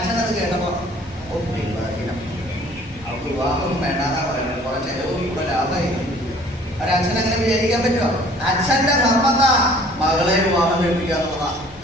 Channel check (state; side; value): normal; both; correlation 0.54